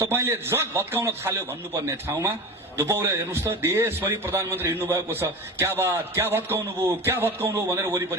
तपाईले जग भत्काउन थाल्यो भन्नुपर्ने ठाउँमा धुपौरे हेर्नुस् त देशभरि प्रधानमन्त्री हिँड्नु भएको छ, क्या बात, क्या भत्काउनु भयो भनेर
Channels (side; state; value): both; normal; correlation 0.31